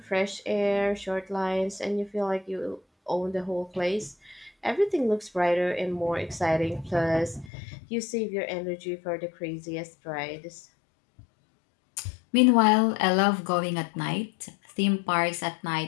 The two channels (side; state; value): right; drops out; at 7.5 s